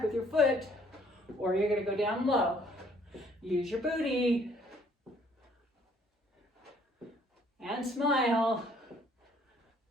with your foot, or you're going to go down low. Use your booty. And smile.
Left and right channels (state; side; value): normal; both; correlation 0.62